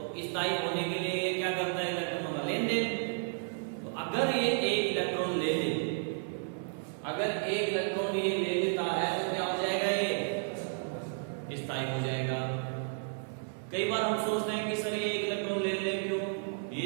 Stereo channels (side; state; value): left; silent; 56 dB below the other